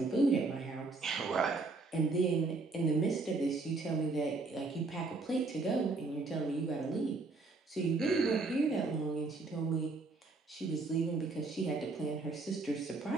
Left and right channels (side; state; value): left; quieter; 3.7 dB